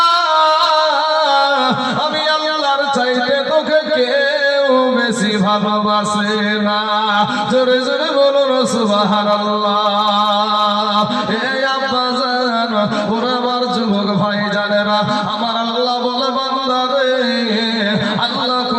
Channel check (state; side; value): identical; both; correlation 1.00